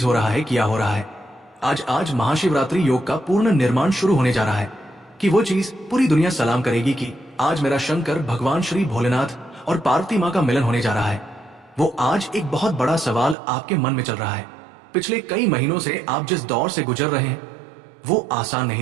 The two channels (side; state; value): left; drops out; at 13.4 s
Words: हो रहा है, क्या हो रहा है। आज आज महाशिवरात्रि योग का पूर्ण निर्माण शुरू होने जा रहा है कि वो चीज पूरी दुनिया सलाम करेगी कि आज मेरा शंकर भगवान श्री भोलेनाथ और पार्वती माँ का मिलन होने जा रहा है। वो आज एक बहुत बड़ा सवाल आपके मन में चल रहा है। पिछले कई महीनों से आप जिस दौर से गुजर रहे हैं वो आसान